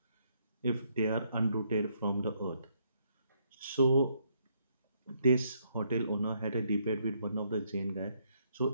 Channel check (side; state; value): both; inverted; correlation -0.72